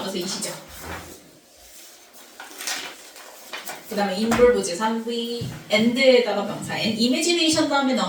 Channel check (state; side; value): identical; both; correlation 1.00